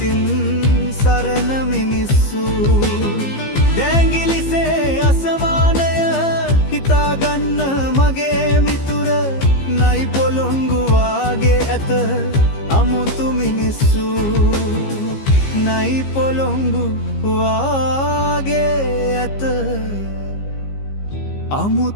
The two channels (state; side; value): late; right; 15 ms